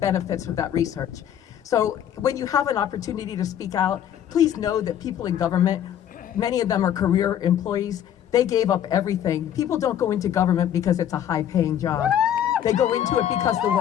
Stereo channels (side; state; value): right; quieter; 10.2 dB